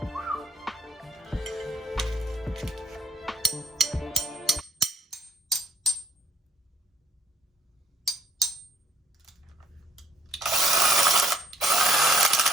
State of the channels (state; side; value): normal; both; correlation 0.65